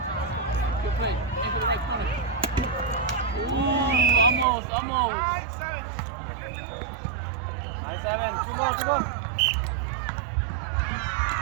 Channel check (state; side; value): drops out; left; at 4.5 s